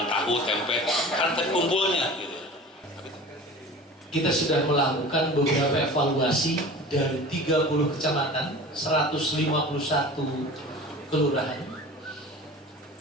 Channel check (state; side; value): normal; both; correlation 0.38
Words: tahu, tempe, kan terkumpulnya. Gitu. Kita sudah melakukan beberapa evaluasi dari 30 kecamatan, 151 kelurahan.